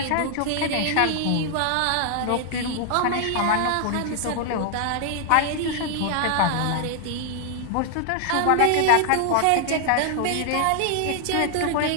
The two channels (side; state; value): both; different; correlation 0.00